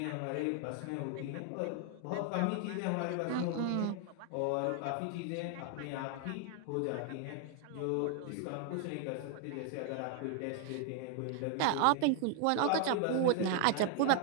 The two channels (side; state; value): both; different; correlation 0.00